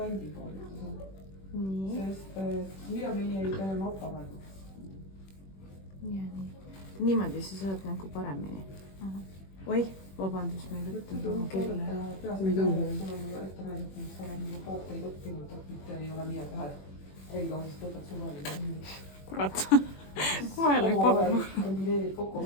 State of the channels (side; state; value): right; late; 21 ms